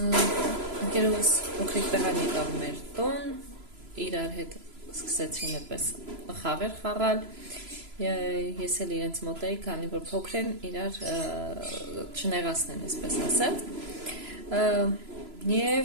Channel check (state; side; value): late; left; 3.0 ms